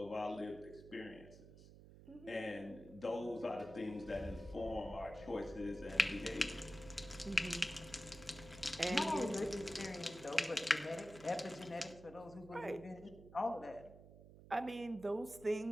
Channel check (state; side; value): noise; right; hum, 18 dB below the sound